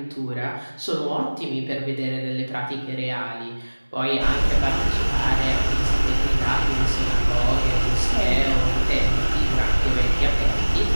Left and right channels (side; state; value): both; inverted; correlation -1.00